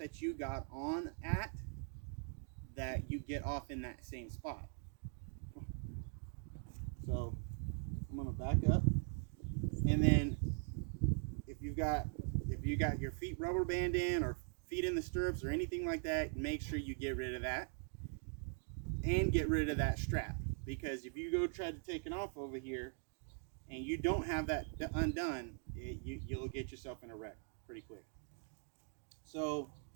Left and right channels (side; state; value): left; silent; 50 dB below the other